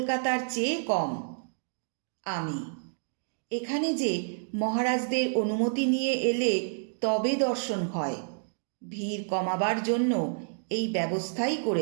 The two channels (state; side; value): silent; left; digital silence